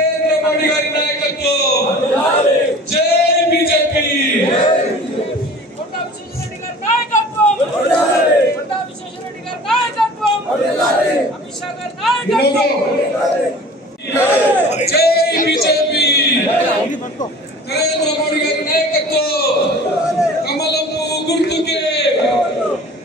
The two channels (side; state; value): both; normal; correlation 0.43